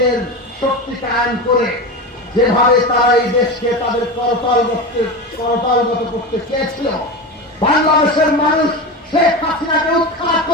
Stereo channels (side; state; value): both; normal; correlation 0.23